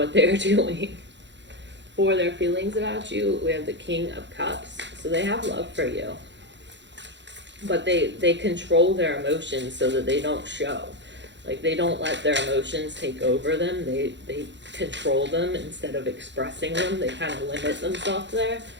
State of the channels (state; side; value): late; left; 0.52 ms